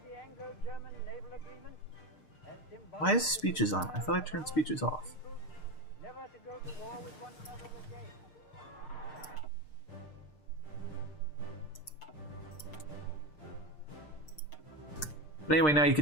the Anglo-German naval agreement as symbolic. Why is speeches on? I thought I turned speeches off. Never to go to war with one another again. But anyway, now you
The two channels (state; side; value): late; right; 6.6 ms